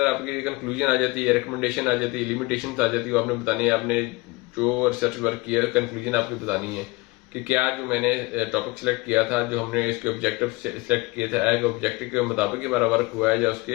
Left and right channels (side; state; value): right; quieter; 23.7 dB